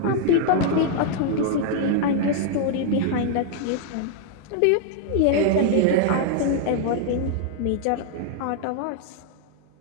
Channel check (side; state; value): both; different; correlation -0.01